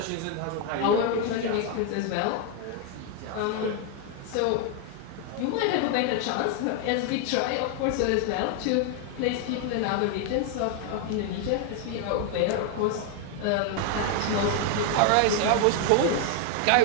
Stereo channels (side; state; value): both; different; correlation 0.01